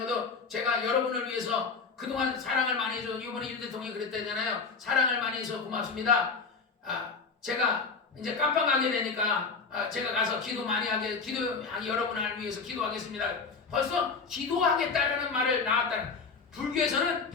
것도 제가 여러분을 위해서 그동안 사랑을 많이 해줘. 이번에 윤 대통령이 그랬다잖아요. 사랑을 많이 해서 고맙습니다. 제가 이제 깜빵 가게 되니까 제가 가서 기도 많이 하게 여러분을 위해서 기도하겠습니다. 벌써 기도하겠다라는 말을 나왔다는. 불교에서는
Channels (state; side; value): quieter; right; 4.8 dB